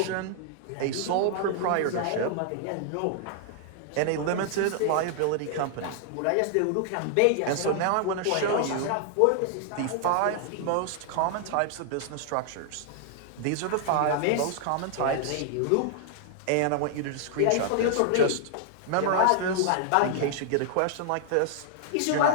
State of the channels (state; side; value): different; both; correlation 0.00